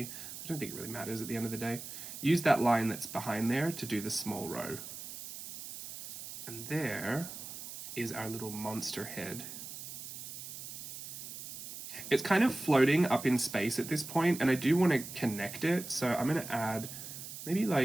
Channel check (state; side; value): noise; right; hiss, 10 dB below the sound